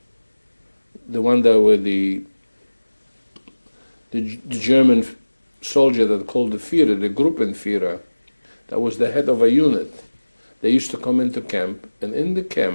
the one that were the German soldier that called the Führer, the Gruppenführer, that was the head of a unit. They used to come into camp, and in the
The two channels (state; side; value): inverted; both; correlation -1.00